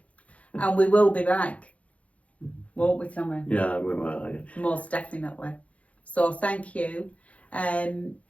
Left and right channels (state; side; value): late; right; 0.065 ms